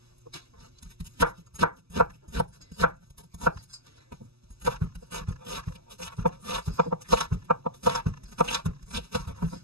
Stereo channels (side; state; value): left; late; 0.78 ms